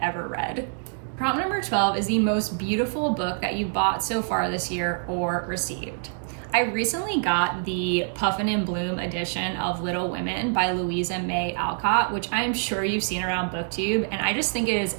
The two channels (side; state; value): left; silent; digital silence